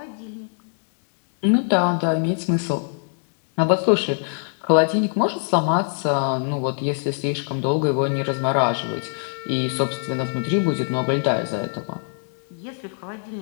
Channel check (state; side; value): silent; right; 57 dB below the other